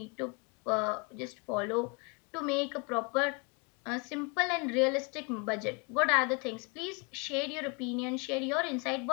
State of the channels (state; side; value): quieter; right; 31.9 dB